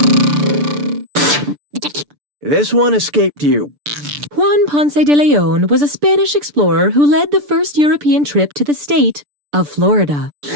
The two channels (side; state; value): left; late; 6.9 ms